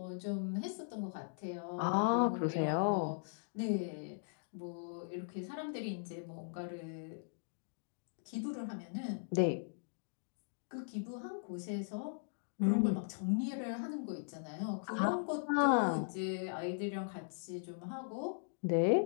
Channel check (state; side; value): silent; right; digital silence